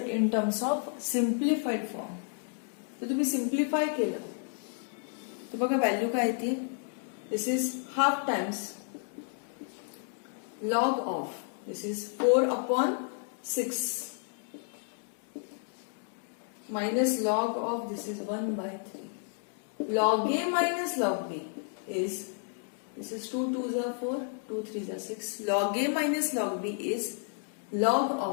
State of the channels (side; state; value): right; silent; 57 dB below the other